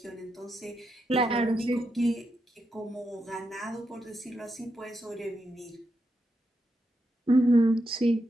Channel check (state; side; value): normal; both; correlation 0.84